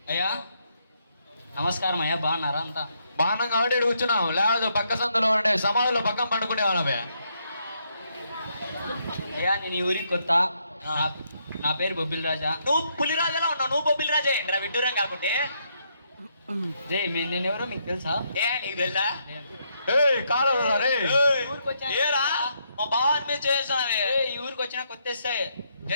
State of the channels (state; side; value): inverted; both; correlation -0.76